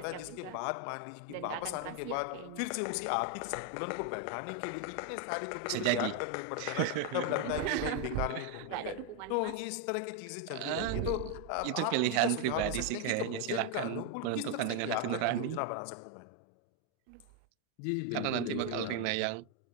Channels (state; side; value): different; both; correlation 0.01